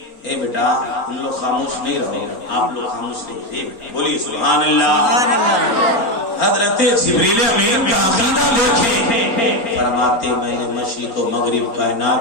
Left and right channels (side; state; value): right; late; 4.4 ms